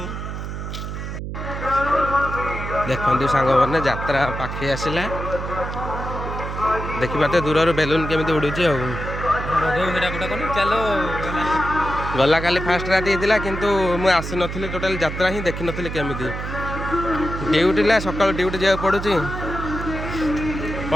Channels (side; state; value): right; noise; hum, 6 dB below the sound